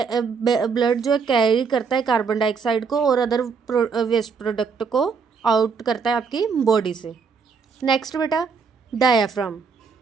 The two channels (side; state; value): left; quieter; 5.5 dB